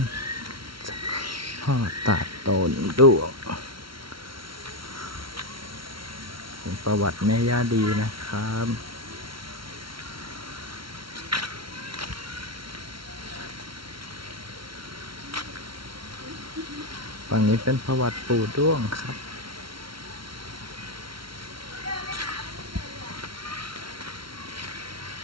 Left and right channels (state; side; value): late; left; 0.74 ms